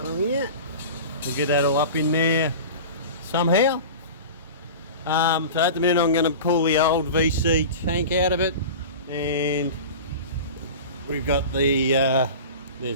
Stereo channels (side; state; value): both; inverted; correlation -0.33